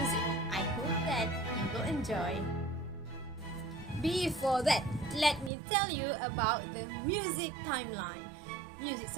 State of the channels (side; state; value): left; drops out; at 5.5 s